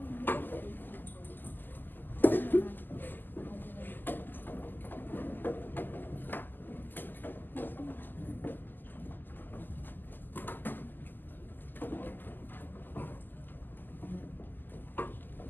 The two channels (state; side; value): late; right; 0.090 ms